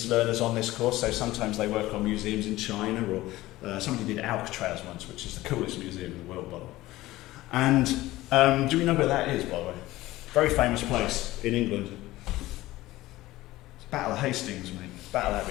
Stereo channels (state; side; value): quieter; right; 17.3 dB